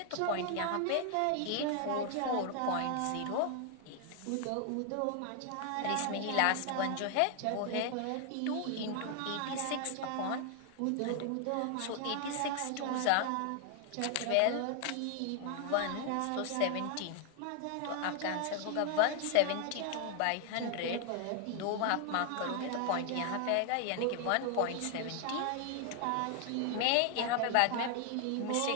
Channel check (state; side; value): different; both; correlation 0.00